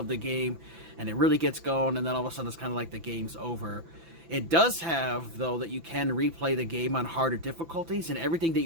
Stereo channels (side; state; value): left; late; 5.9 ms